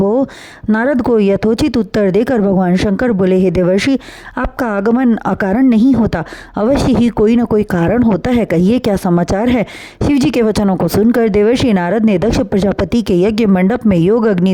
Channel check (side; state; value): both; identical; correlation 1.00